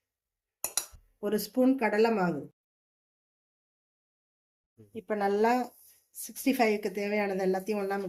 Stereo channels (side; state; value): both; identical; correlation 1.00